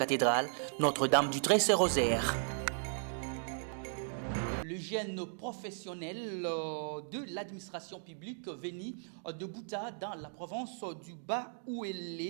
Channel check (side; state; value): left; silent; digital silence